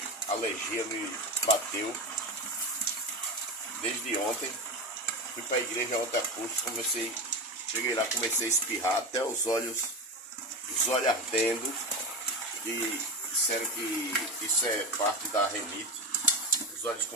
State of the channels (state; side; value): normal; both; correlation 0.21